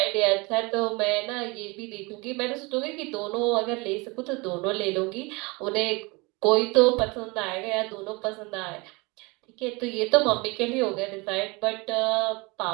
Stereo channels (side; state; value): left; quieter; 26.5 dB